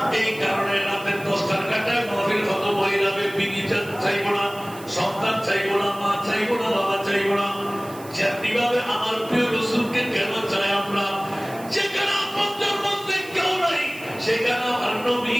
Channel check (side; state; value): right; noise; hiss, 19 dB below the sound